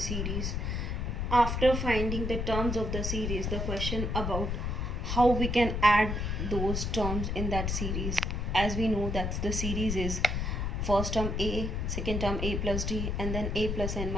After finding the terms of the series, the question about how we can add those terms in that series. As we know that the series is first term a, second term a plus d, and then a plus n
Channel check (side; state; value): left; noise; rumble, 1 dB below the sound